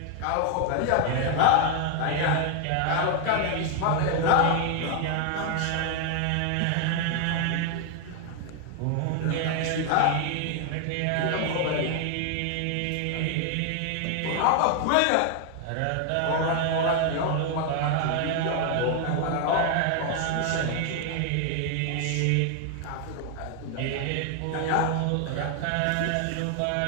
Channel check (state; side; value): different; both; correlation 0.00